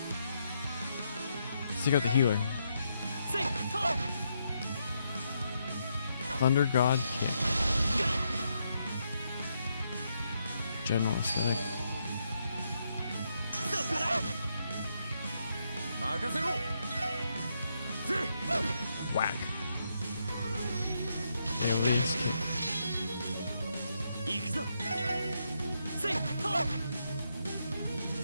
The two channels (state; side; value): inverted; both; correlation -0.79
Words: Let's take out the healer. Thunder God Kick. General aesthetic. Whack. Aliens kick.